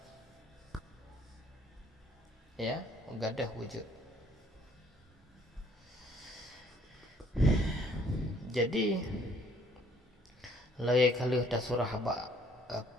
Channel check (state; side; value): normal; both; correlation 0.61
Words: ya gadah wujud. Jadi lagi kali dah surah